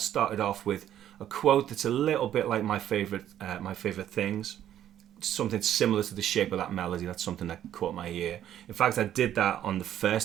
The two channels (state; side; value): quieter; left; 11.2 dB